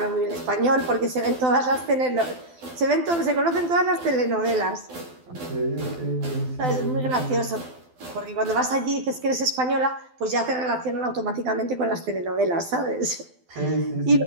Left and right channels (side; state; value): left; late; 12 ms